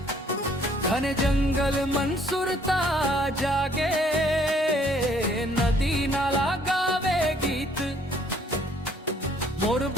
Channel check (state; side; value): normal; both; correlation 0.62